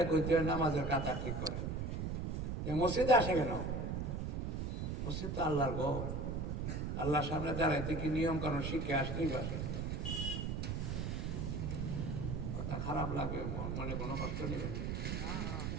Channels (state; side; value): noise; right; rumble, 2 dB below the sound